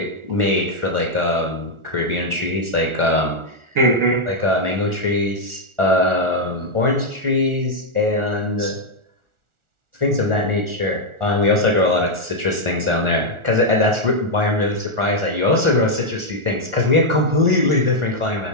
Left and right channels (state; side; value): late; left; 1.4 ms